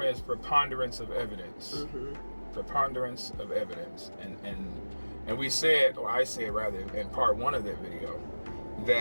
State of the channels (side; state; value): both; inverted; correlation -1.00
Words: is preponderance of evidence. Mm-hmm. Preponderance of evidence, and we said, or I said rather, in part one of that video,